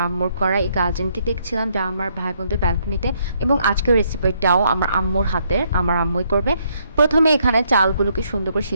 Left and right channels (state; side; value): inverted; both; correlation -0.72